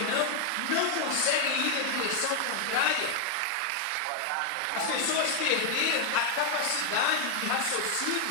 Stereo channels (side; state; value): both; different; correlation 0.00